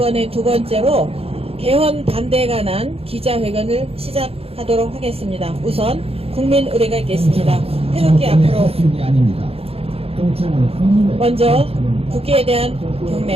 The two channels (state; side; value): late; left; 0.28 ms